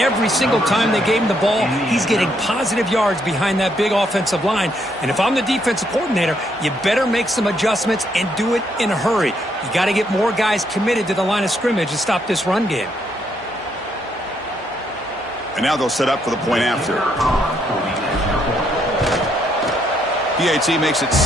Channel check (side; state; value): both; normal; correlation 0.73